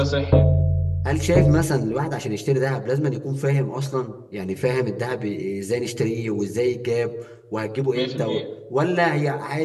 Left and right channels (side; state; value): both; identical; correlation 1.00